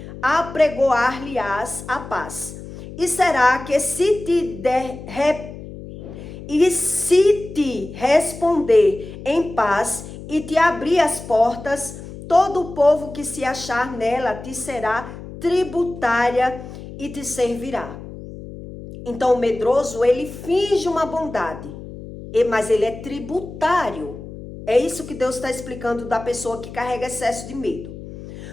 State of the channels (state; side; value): noise; left; hum, 13 dB below the sound